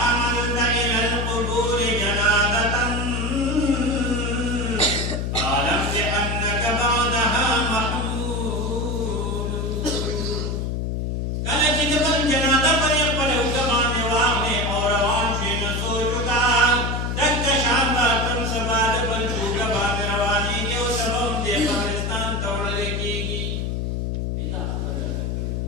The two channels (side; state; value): left; noise; hum, 1 dB below the sound